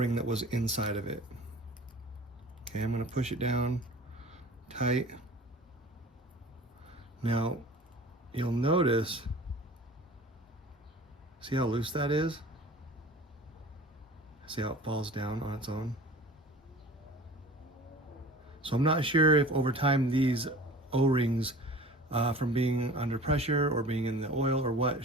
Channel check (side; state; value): both; normal; correlation 0.42